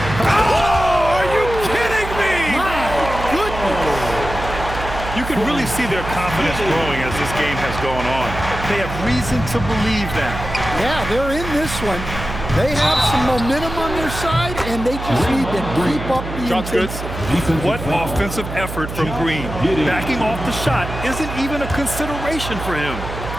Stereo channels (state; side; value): noise; right; hum, 8 dB below the sound